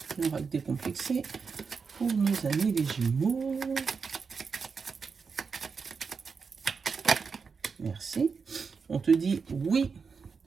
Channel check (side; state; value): left; quieter; 5.4 dB